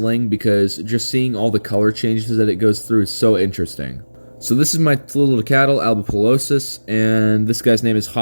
because just seeing all the color changes that it goes through is so interesting. So this is my tliltocatl albipalosus, and this guy's name is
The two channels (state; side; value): inverted; both; correlation -1.00